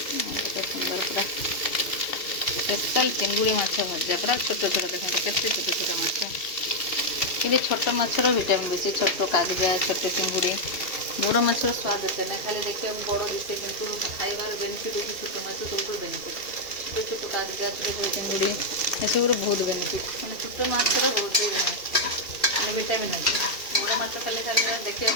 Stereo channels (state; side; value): late; right; 2.7 ms